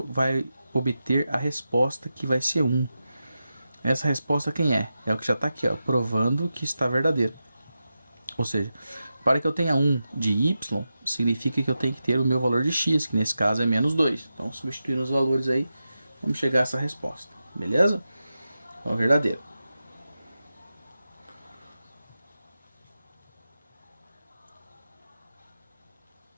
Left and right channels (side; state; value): both; inverted; correlation -0.91